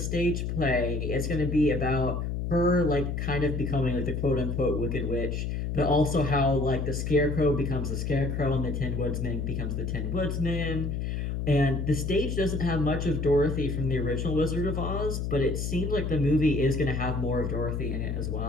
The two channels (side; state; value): left; noise; hum, 2 dB below the sound